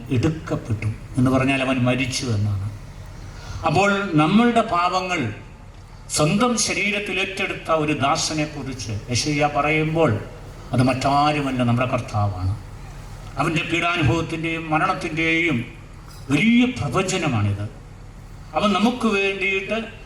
എടുക്കപ്പെട്ടു എന്ന് പറഞ്ഞാൽ അവൻ മരിച്ചു എന്നാണ്. അപ്പോൾ നമ്മളുടെ പാപങ്ങൾ സ്വന്തം ശരീരത്തിൽ ഏറ്റെടുത്ത ഒരു ദാസനെ കുറിച്ച് യെശയ്യാ പറയുമ്പോൾ അത് മറ്റാരുമല്ല, നമ്മുടെ കർത്താവാണ്. അവൻ്റെ പീഡാനുഭവത്തിൻ്റെയും മരണത്തിൻ്റെയും വലിയ പ്രവചനമാണിത്. അവൻ നമുക്ക് വേണ്ടിയിട്ട്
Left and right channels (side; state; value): both; identical; correlation 1.00